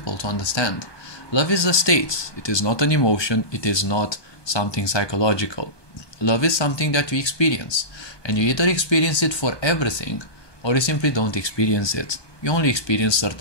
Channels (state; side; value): late; right; 1.2 ms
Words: to understand. Love is a state. It is not an emotion. It is not something psychological. Love is something that you experience, and you either experience it for everything or you simply don't experience it. You only experience